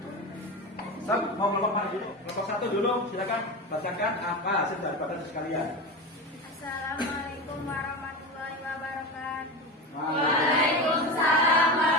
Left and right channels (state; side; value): normal; both; correlation 0.23